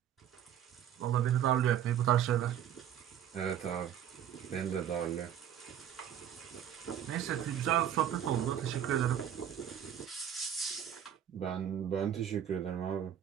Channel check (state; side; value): quieter; left; 9.9 dB